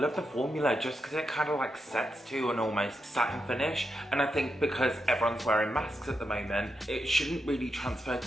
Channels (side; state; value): both; normal; correlation 0.85